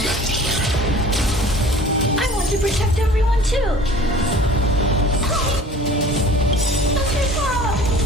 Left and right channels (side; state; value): both; normal; correlation 0.46